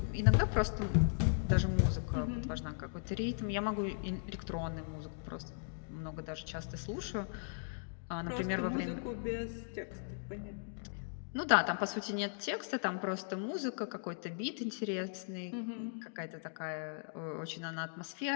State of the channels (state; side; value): silent; right; digital silence